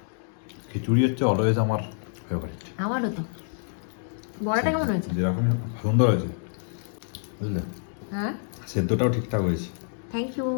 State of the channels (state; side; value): silent; right; digital silence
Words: খিচুড়ি হচ্ছে অলওয়েজ আমার ফেভারিট। আমারও তো। বড়াটা কেমন হয়েছে? যেরকম সুন্দর হয়েছে, বুঝলে? হ্যাঁ, সেদ্ধটাও ঠিকঠাক হয়েছে। Thank you.